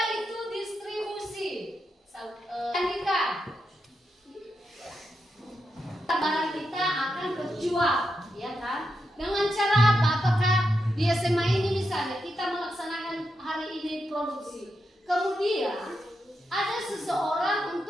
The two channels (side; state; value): both; normal; correlation 0.85